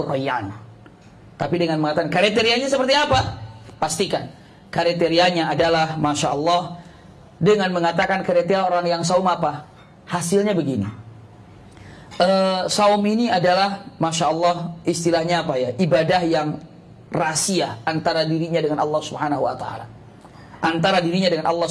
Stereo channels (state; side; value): identical; both; correlation 1.00